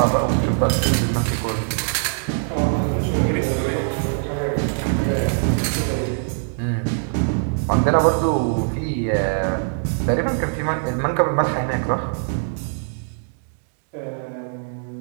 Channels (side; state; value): left; silent; digital silence